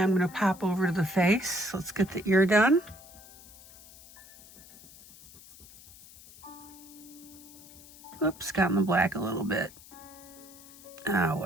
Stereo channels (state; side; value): noise; left; hiss, 20 dB below the sound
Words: I'm going to pop over to the face. Let's get the ear done. Oops, got in the black a little bit. Oh,